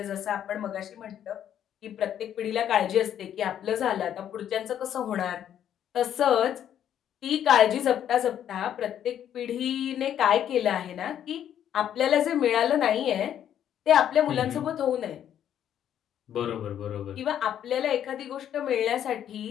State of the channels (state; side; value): quieter; right; 10.1 dB